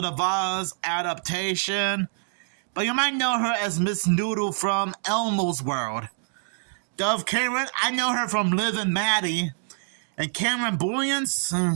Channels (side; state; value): left; silent; digital silence